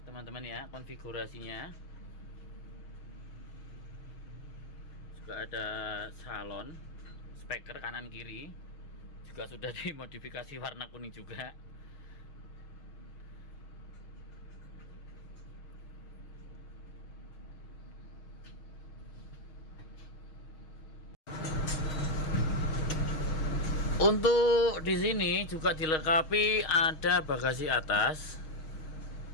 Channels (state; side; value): late; right; 6.4 ms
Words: teman-teman ya, konfigurasinya juga ada salon, speaker kanan kiri juga sudah dimodifikasi warna kuning juga. Untuk di sini juga dilengkapi ada bagasi atas